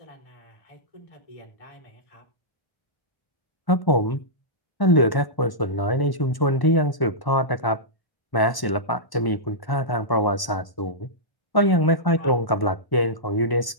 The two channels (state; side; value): late; right; 1.1 ms